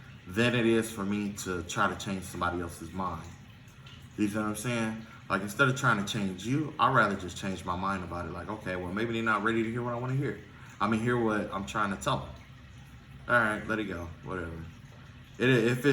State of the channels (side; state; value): both; identical; correlation 1.00